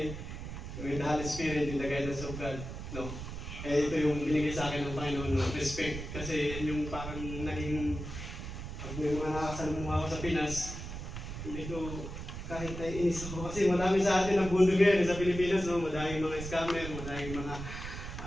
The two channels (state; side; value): noise; right; rumble, 8 dB below the sound